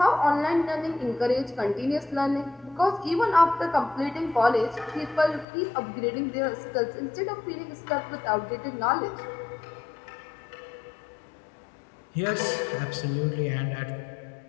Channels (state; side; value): drops out; right; at 5.5 s